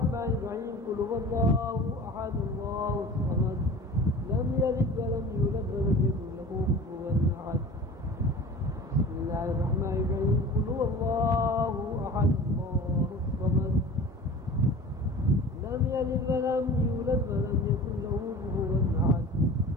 الرحيم. قل هو الله أحد الله الصمد لم يلد ولم يولد ولم يكن له كفوا أحد. بسم الله الرحمن الرحيم. قل هو الله أحد الله الصمد لم يلد ولم يولد ولم يكن له كفوا أحد.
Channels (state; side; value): normal; both; correlation 0.39